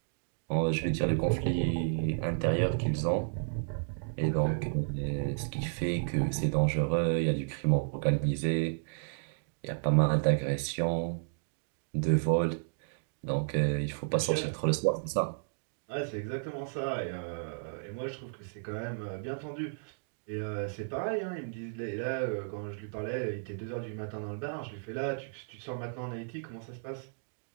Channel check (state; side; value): silent; left; digital silence